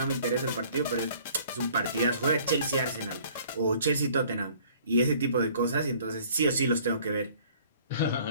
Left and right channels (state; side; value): inverted; both; correlation -0.55